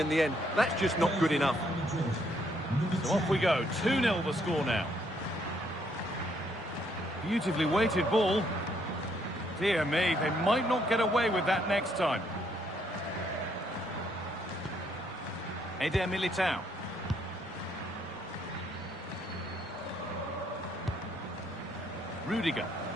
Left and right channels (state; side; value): normal; both; correlation 0.70